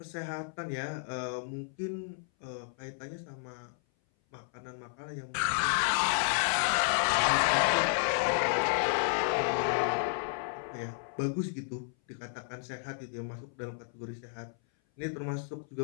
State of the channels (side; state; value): right; silent; 56 dB below the other